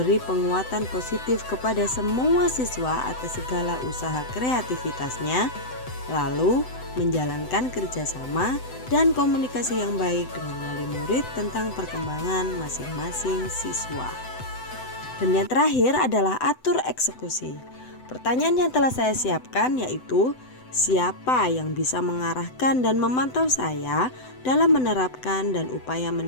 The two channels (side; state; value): right; late; 7.9 ms